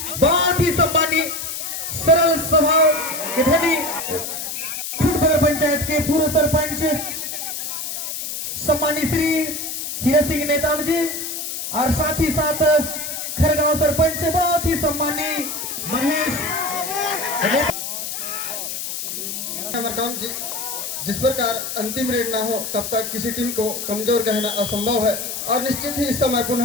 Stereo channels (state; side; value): noise; left; hiss, 5 dB below the sound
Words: बहुत ही सम्मानित सरल स्वभाव के धनी खुटपदर पंचायत के पूर्व सरपंच सम्मानित श्री हीरा सिंह नेताम जी और साथ ही साथ खरगांव सरपंच बहुत ही सम्मानित महेश मरकाम जी। जिस प्रकार अंतिम रेड ना हो तब तक किसी टीम को कमजोर कहना असंभव है। और निश्चित ही इस समय